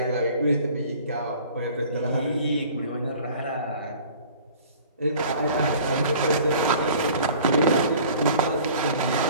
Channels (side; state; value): both; inverted; correlation -0.48